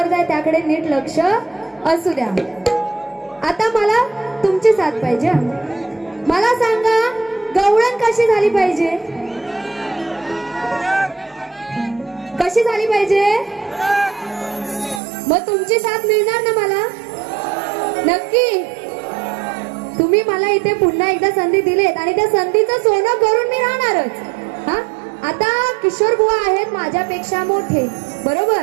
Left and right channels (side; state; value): left; drops out; at 15.0 s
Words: आहे, त्याकडे नीट लक्ष असू द्या. आता मला तुमची साथ पाहिजे. मला सांगा गवळण कशी झाली पाहिजे, कशी झाली पाहिजे? मग तुमची साथ मिळणार ना मला? नक्की. तुम्ही मला इथे पुन्हा एकदा संधी दिलीत आणि त्या संधीचं सोनं करून मी राहणारच. हा आता किशोर बुवा आहेत माझ्यापेक्षा मोठे,